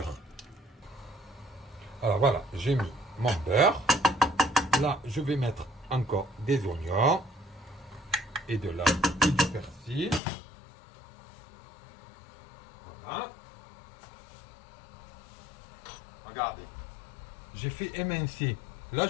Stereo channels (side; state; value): right; drops out; at 10.2 s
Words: Alors voilà, j'ai mis mon beurre. Là, je vais mettre encore des oignons et de l'ail et du persil. Voilà. Regardez. J'ai fait émincer. Là,